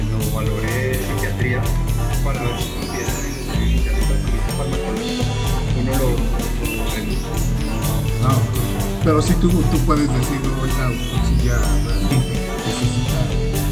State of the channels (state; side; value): identical; both; correlation 1.00